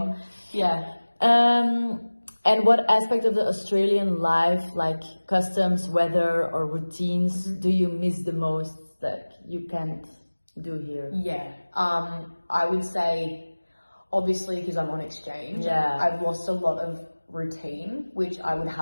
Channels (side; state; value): both; inverted; correlation -1.00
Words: Yeah. And what aspect of the Australian life, like customs, weather, or routines, do you miss the most that you can't do here? Yeah. I would say, obviously, because I'm on exchange, I've lost a lot of routine, which I would